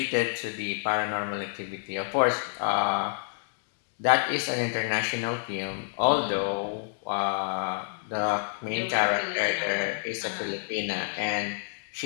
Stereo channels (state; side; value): silent; right; 59 dB below the other